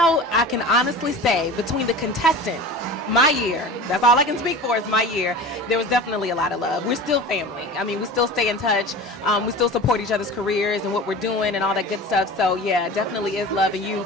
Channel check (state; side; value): normal; both; correlation 0.35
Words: I can honestly say between the contestants, my year, that's all I can speak for is my year, there was definitely a lot of love. We're still family. I mean, we still stay in touch. We still support each other's careers and what we're doing and all that good stuff. So, yeah, definitely is love. And you